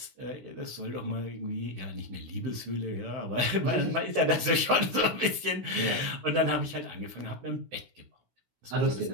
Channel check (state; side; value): late; left; 16 ms